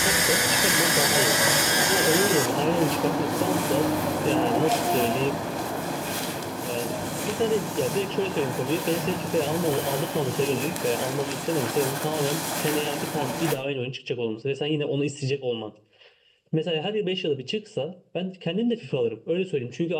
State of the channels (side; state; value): both; identical; correlation 1.00